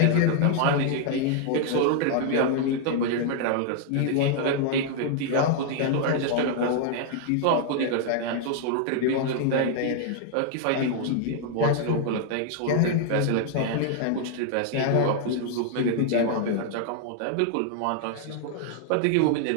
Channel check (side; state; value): both; different; correlation 0.00